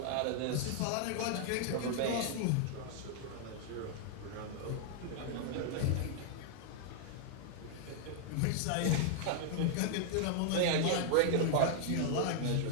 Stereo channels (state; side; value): different; both; correlation -0.01